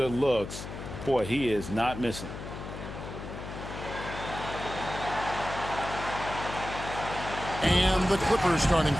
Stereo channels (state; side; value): noise; left; hum, 9 dB below the sound